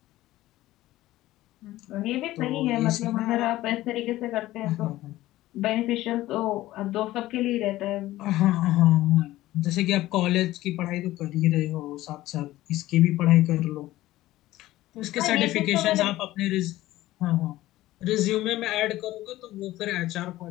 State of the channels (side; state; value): right; quieter; 16.1 dB